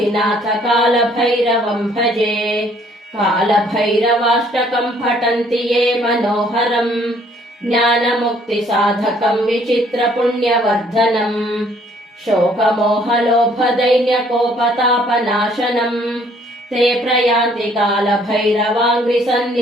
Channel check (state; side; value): normal; both; correlation 0.62